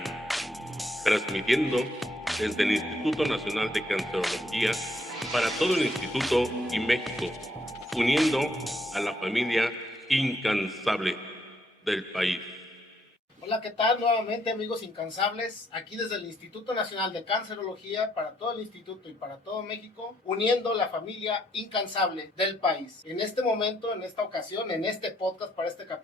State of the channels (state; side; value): normal; both; correlation 0.72